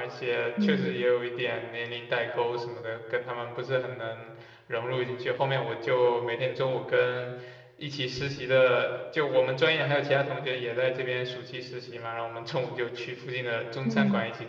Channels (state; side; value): identical; both; correlation 1.00